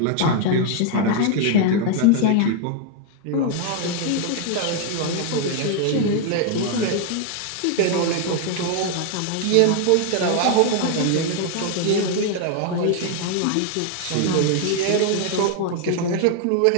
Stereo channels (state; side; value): different; both; correlation 0.00